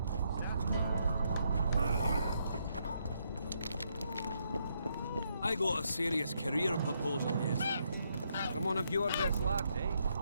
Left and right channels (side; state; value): both; inverted; correlation -0.76